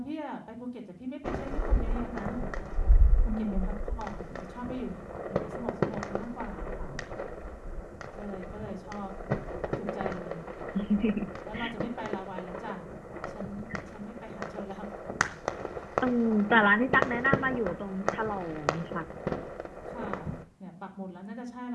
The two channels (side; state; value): both; identical; correlation 1.00